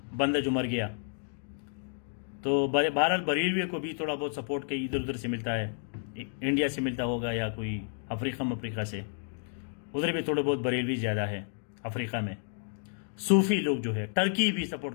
بندہ جو مر گیا، تو بہرحال بریلوی کو بھی تھوڑا بہت سپورٹ کئی ادھر ادھر سے ملتا ہے، انڈیا سے ملتا ہوگا یا کوئی افریقہ سے، ادھر بھی تھوڑے بہت بریلوی زیادہ ہے افریقہ میں۔ صوفی لوگ جو ہے، ٹرکی بھی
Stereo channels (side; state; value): right; silent; digital silence